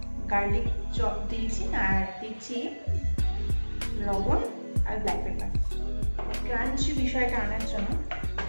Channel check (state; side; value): inverted; both; correlation -1.00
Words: garlic chop দিয়েছি, আর দিচ্ছি লবণ আর ব্ল্যাক পেপার। ক্রাঞ্চি বিষয়টা আনার জন্য